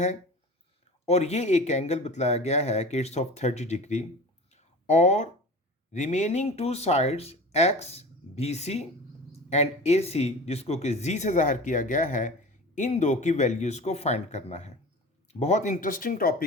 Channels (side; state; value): both; normal; correlation 0.36